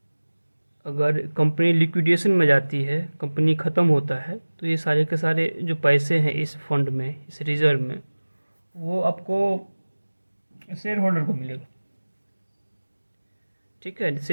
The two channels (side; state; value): both; inverted; correlation -1.00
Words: अगर कंपनी लिक्विडेशन में जाती है, कंपनी ख़त्म होता है, तो ये सारे के सारे जो पैसे हैं इस फंड में, इस रिज़र्व में, वो आपको शेयर होल्डर को मिलेगा। ठीक है,